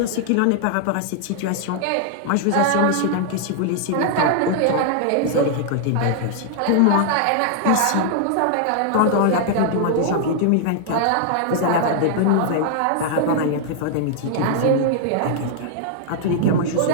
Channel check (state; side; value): different; both; correlation -0.01